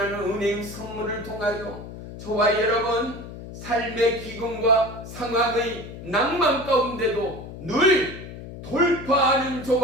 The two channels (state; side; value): noise; left; hum, 12 dB below the sound